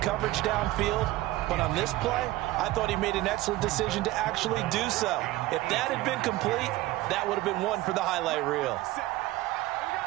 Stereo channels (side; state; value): left; quieter; 17.5 dB